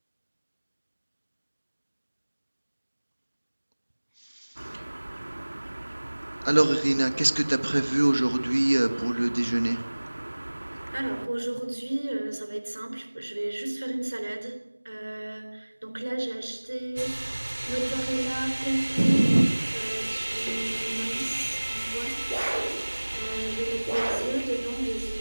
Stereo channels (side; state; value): both; inverted; correlation -1.00